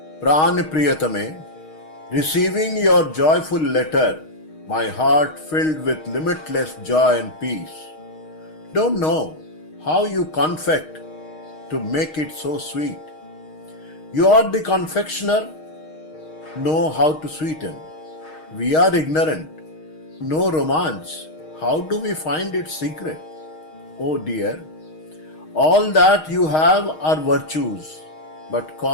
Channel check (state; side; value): late; right; 6.4 ms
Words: Pran Priyatame, receiving your joyful letter, my heart filled with limitless joy and peace. Don't know how you confect to make it so sweet. You are the confectioner, know how to sweeten. We are ignorant, no romance. How do we find its secret? Oh dear, all that you have are virtues, but